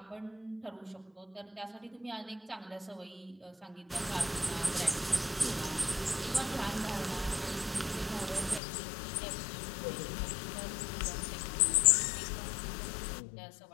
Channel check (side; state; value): right; drops out; at 8.6 s